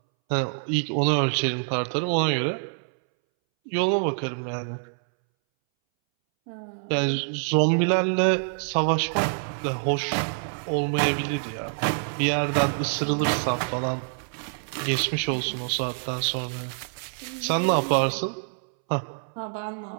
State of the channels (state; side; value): silent; left; 61 dB below the other